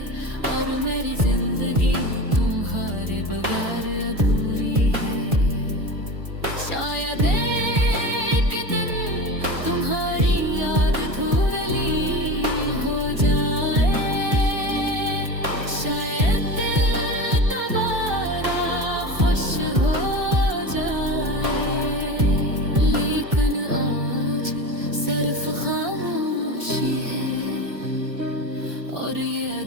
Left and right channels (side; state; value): left; late; 1.4 ms